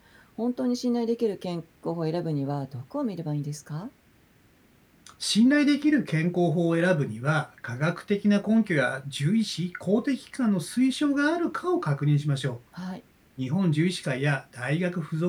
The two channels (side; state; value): both; identical; correlation 1.00